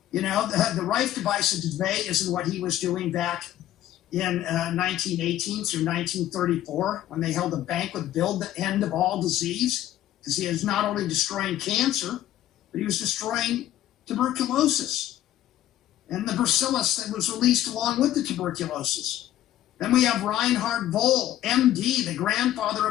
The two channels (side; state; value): right; quieter; 13.0 dB